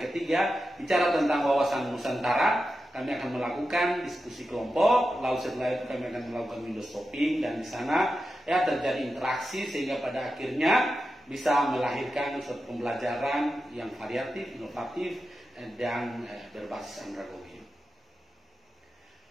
bicara tentang wawasan Nusantara, kami akan melakukan diskusi kelompok, lalu setelah itu kami akan melakukan window shopping, dan di sana ya terjadi interaksi sehingga pada akhirnya bisa melahirkan suatu pembelajaran yang variatif, inovatif, dan berbasis andragogi.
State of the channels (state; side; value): normal; both; correlation 0.90